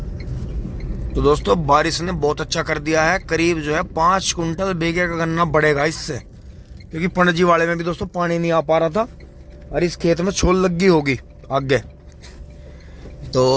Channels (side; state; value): both; identical; correlation 1.00